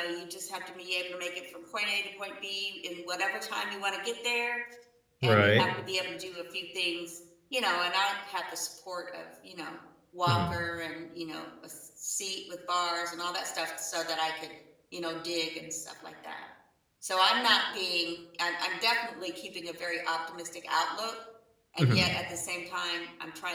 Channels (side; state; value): both; identical; correlation 1.00